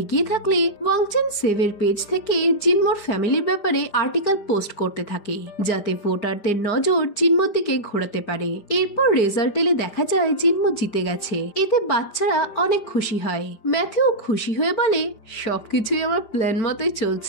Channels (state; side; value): late; right; 5.0 ms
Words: এগিয়ে থাকলে ওয়াংচেন সেভের পেজ থেকে জিনমোর ফ্যামিলির ব্যাপারে আর্টিকেল পোস্ট করতে থাকে, যাতে ভোটারদের নজর জিনমোর দিকে ঘোরাতে পারে। এরপর রেজাল্ট এলে দেখা যায় জিনমো জিতে গেছে। এতে বাচ্চারা অনেক খুশি হয়। ম্যাথিউ খুশি হয়ে বলে, সবকিছুই আমার প্ল্যান মতোই